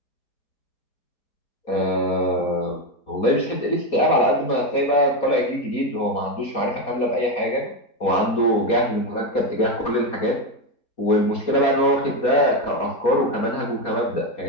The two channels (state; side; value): late; right; 4.2 ms